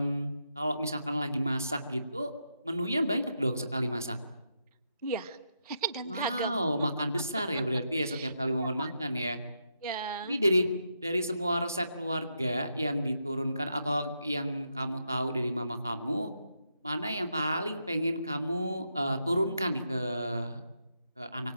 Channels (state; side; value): inverted; both; correlation -0.82